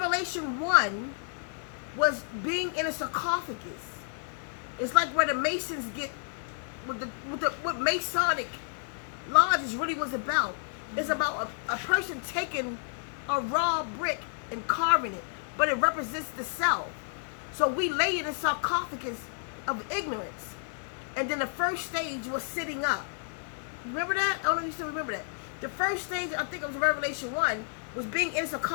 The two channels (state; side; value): silent; right; digital silence